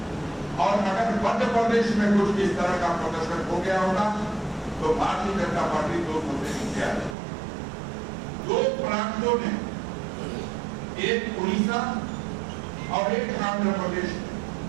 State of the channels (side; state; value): left; drops out; at 7.2 s